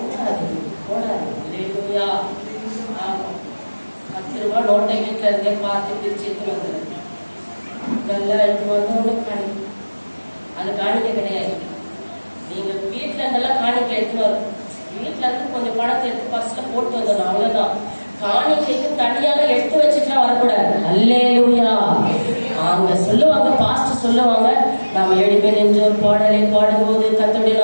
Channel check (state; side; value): inverted; both; correlation -1.00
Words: போடாது. அல்லேலூயா. 10 ரூபாய் நோட்டை வீட்டுல இருந்தே பார்த்து பிரிச்சு எடுத்து வந்துடுது. நல்லா எடுத்து வந்து ஒண்ணு காணிக்க. அது காணிக்க கிடையாது. நீங்க வீட்டுல இருந்தெல்லாம் காணிக்க எடுத்துன்னு வரும். வீட்டுல இருந்து கொஞ்சம் பணத்தை எடுத்து பர்ஸ்ல போட்டு வந்துடணும், அவ்வளவுதான். காணிக்கைக்கு தனியாக எடுத்து வச்சுட்டுலாம் வரக்கூடாது. அல்லேலூயா. அவங்க சொல்லுவாங்க, பாஸ்டர் சொல்லுவாங்க, நாம 7 பேர் நின்று ஒரு பாடலை பாடும்போது கர்த்தருடைய